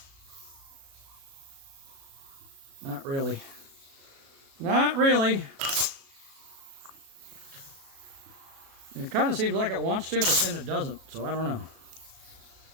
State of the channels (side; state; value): left; late; 36 ms